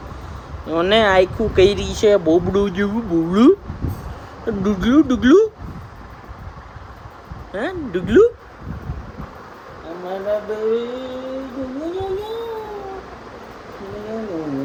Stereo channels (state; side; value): identical; both; correlation 1.00